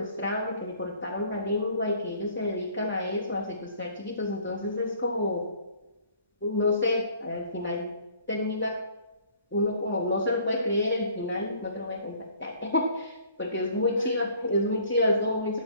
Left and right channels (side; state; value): both; inverted; correlation -0.55